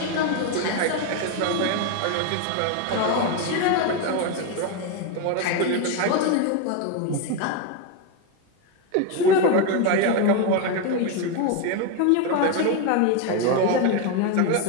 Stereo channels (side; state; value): both; different; correlation 0.02